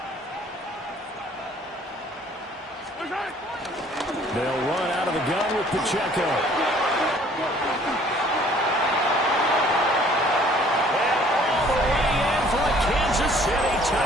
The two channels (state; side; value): normal; both; correlation 0.57